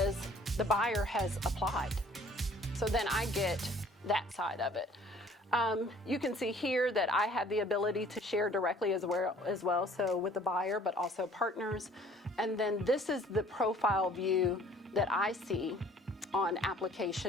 the buyer has applied. So then I get that side of it. You can see here that I have the ability to share directly as well, so with the buyer, but also partners. And then this is the profile view that I see on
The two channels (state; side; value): normal; both; correlation 0.54